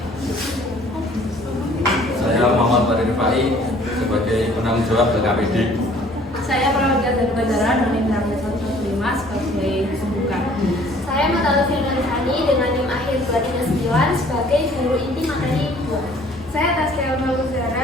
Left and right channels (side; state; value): both; normal; correlation 0.55